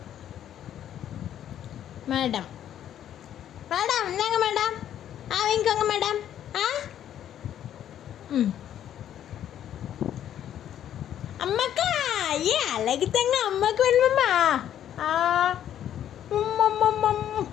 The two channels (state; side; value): quieter; right; 10.6 dB